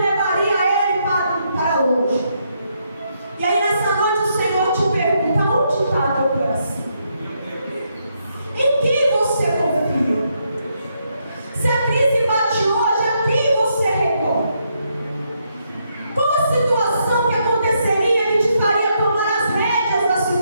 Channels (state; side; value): inverted; both; correlation -0.77